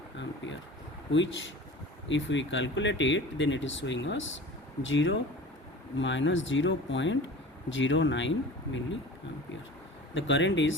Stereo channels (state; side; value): normal; both; correlation 0.38